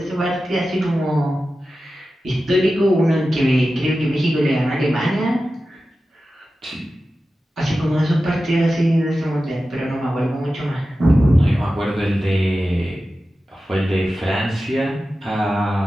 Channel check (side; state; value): both; normal; correlation 0.93